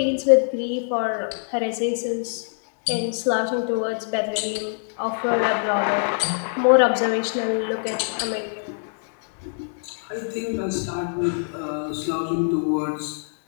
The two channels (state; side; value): silent; right; 63 dB below the other